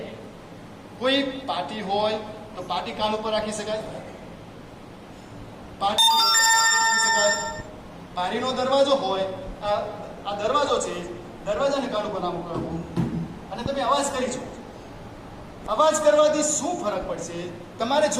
કોઈ પાટી હોય તો પાટી કાન ઉપર રાખી શકાય. બારીનો દરવાજો હોય, આ દરવાજો છે, દરવાજાને કાન ઉપર નામ કરવું અને તમે અવાજ કરી છો. અવાજ કરવાથી શું ફરક પડશે તમારે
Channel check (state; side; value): identical; both; correlation 1.00